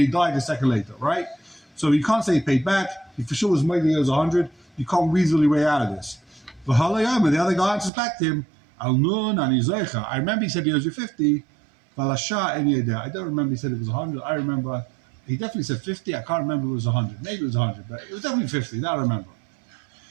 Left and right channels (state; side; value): drops out; left; at 7.9 s